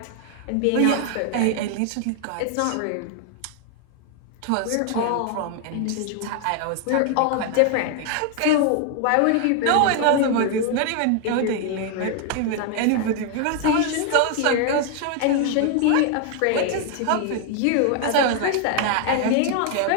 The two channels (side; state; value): both; different; correlation 0.00